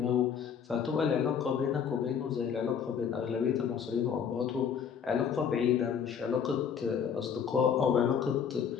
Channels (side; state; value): right; quieter; 7.4 dB